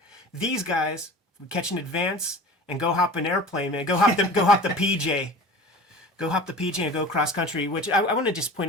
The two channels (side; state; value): both; normal; correlation 0.38